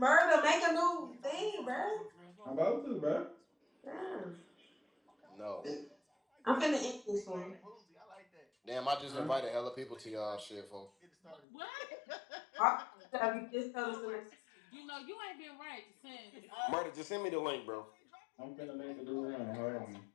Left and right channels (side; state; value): right; drops out; at 11.4 s